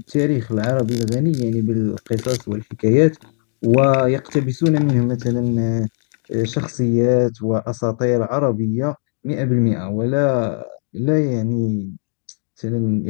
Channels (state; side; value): silent; right; digital silence